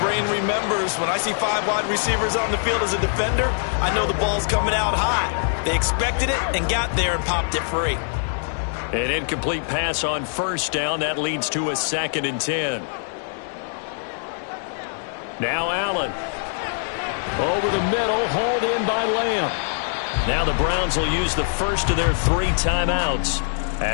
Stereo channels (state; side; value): silent; right; digital silence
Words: remembers, when I see 5 wide receivers on the field as a defender, I know the ball's coming out high. They expected it and got there and popped it free. An incomplete pass on 1st down. That leads to a 2nd and 10. Now Allen. Over the middle, hauled in by Lamb. Now the Browns will use the first of their 3 timeouts,